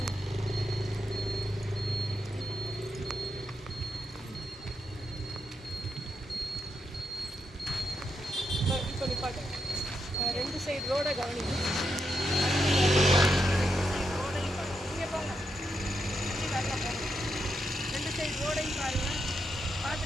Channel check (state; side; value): normal; both; correlation 0.83